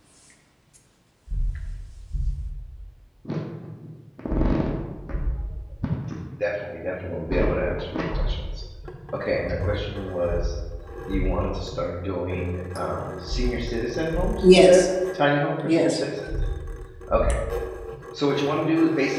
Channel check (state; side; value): identical; both; correlation 1.00